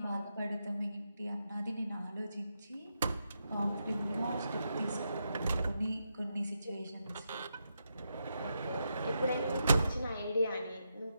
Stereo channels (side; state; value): both; inverted; correlation -0.84